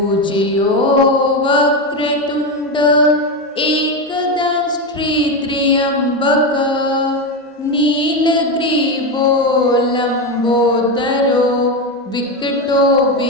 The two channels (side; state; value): both; normal; correlation 0.13